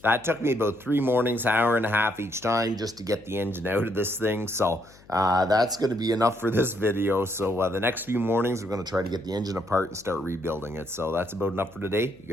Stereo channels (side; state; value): left; noise; hum, 25 dB below the sound